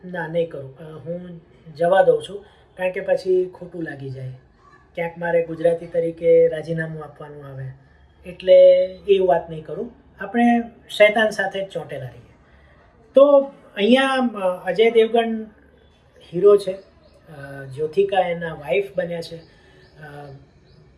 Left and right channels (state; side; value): identical; both; correlation 1.00